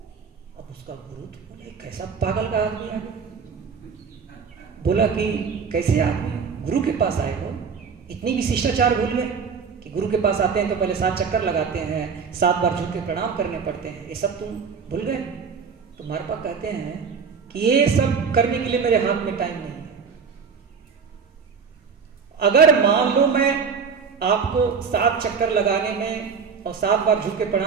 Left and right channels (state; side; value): quieter; left; 6.0 dB